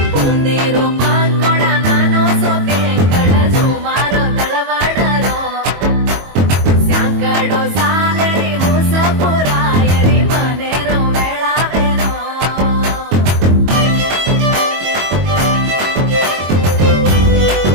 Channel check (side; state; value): left; late; 22 ms